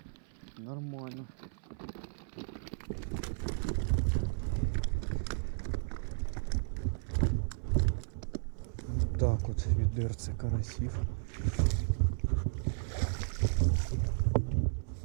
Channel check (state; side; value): silent; left; 55 dB below the other